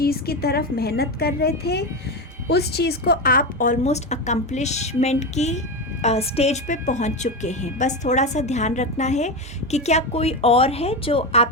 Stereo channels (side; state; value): both; normal; correlation 0.16